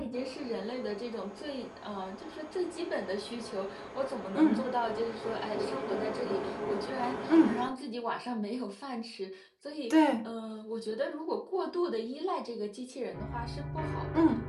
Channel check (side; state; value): both; identical; correlation 1.00